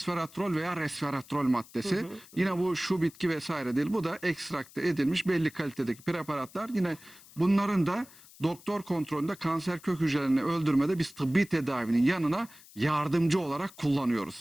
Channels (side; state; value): left; noise; hiss, 22 dB below the sound